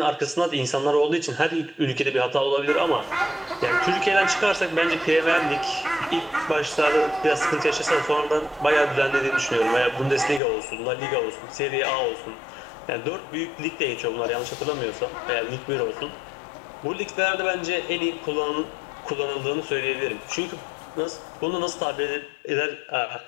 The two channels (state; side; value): drops out; right; at 10.4 s